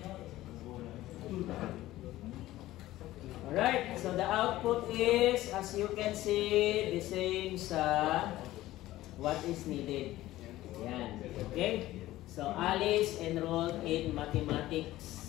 Alright, so the output is, as you can see, the same sa what is needed. Yan. Okay? So, Alice enrolled in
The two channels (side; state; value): right; quieter; 15.9 dB